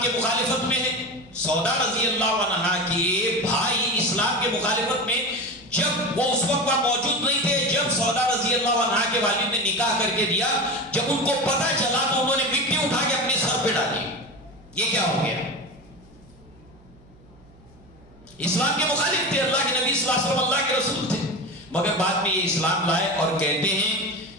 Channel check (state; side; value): noise; right; hum, 26 dB below the sound